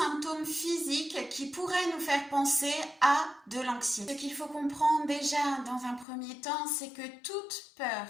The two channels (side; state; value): right; drops out; at 6.1 s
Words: physiques qui pourraient nous faire penser à de l'anxiété. Ce qu'il faut comprendre déjà dans un premier temps, c'est que toute peur